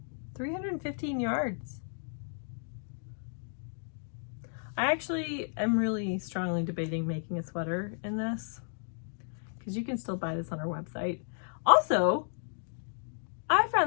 315 yards. I actually am really strongly debating making a sweater in this, because you can still buy this on our website. Also, I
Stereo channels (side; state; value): right; silent; digital silence